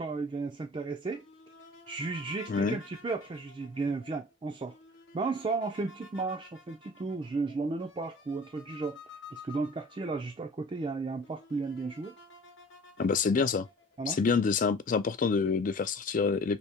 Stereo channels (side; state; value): both; normal; correlation 0.45